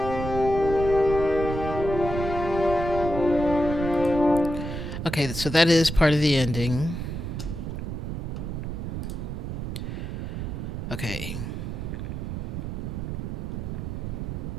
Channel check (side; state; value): right; noise; rumble, 5 dB below the sound